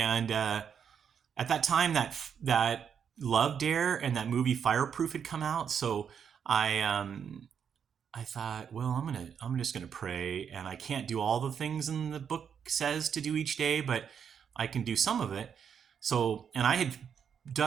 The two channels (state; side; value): quieter; left; 7.6 dB